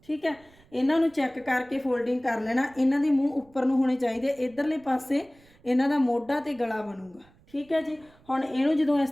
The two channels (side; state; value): right; noise; rumble, 29 dB below the sound